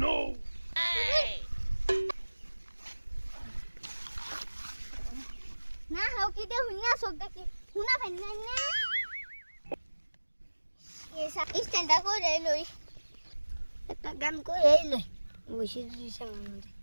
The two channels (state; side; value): inverted; both; correlation -1.00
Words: না হাও কি দে হুইনা sok দেখি হুনা ফাইন না না এসা স্ট্যান্ডটা করে লই একটা গান করে লই বসে দিছেন মধ্যে